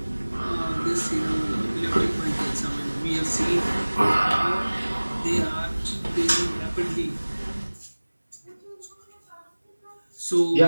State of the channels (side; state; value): both; inverted; correlation -1.00